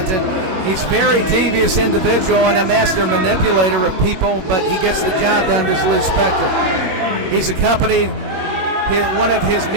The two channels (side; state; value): left; late; 21 ms